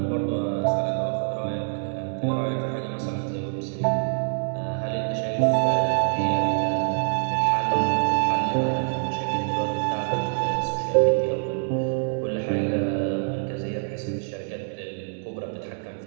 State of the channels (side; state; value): left; silent; digital silence